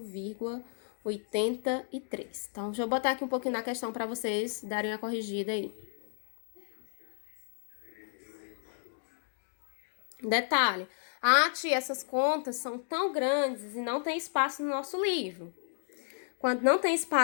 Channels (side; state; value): right; silent; digital silence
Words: Então, deixa eu botar aqui um pouquinho na questão para vocês darem a corrigida aí. Detalhe. Ah, tia, essas contas são tão grandes e não tem espaço no nosso livro. Quando não tem